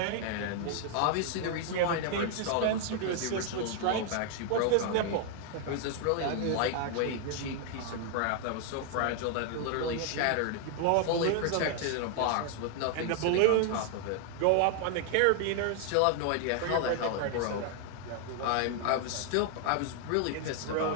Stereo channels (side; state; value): both; different; correlation 0.00